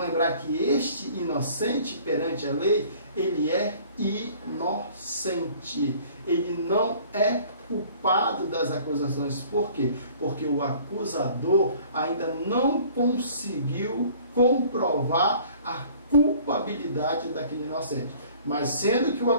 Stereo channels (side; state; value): both; inverted; correlation -0.52